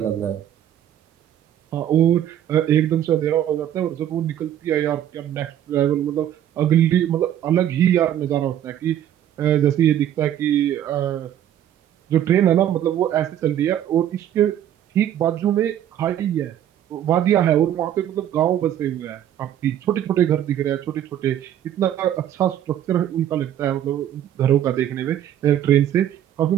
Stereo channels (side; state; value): left; quieter; 11.0 dB